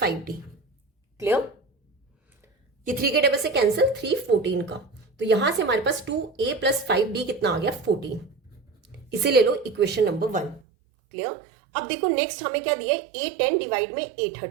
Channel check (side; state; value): left; drops out; at 10.6 s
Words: क्लियर? ये 3 के टेबल से कैंसिल, 3 14 का, तो यहां से हमारे पास 2a + 5d कितना आ गया 14। इसे ले लो इक्वेशन नंबर 1। क्लियर? अब देखो नेक्स्ट हमें क्या दिया है, A10 डिवाइड में